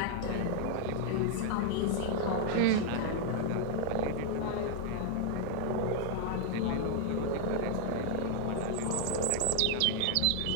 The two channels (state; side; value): different; both; correlation 0.00